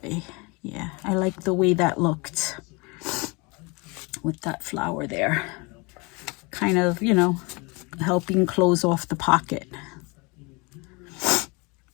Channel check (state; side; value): quieter; right; 28.3 dB